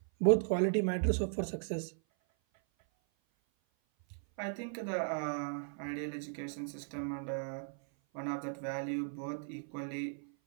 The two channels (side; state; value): left; silent; 53 dB below the other